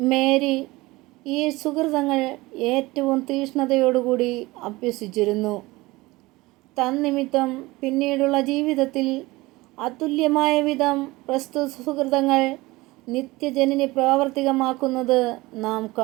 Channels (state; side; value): quieter; left; 20.9 dB